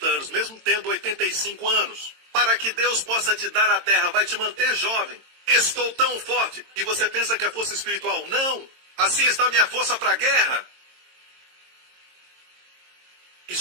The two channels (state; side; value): late; left; 22 ms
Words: anos, mesmo tendo 85 anos. Para que Deus possa te dar a terra, vai te manter jovem. Estou tão forte. E você pensa que é força espiritual? Não. Assim está a minha força para a guerra. E